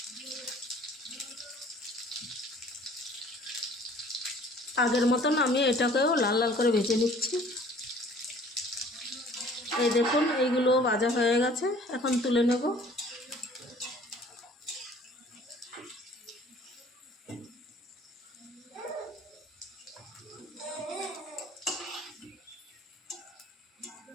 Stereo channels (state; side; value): normal; both; correlation 0.52